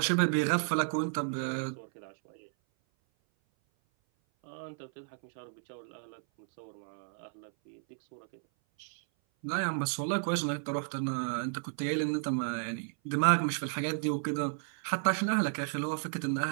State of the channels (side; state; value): left; silent; 56 dB below the other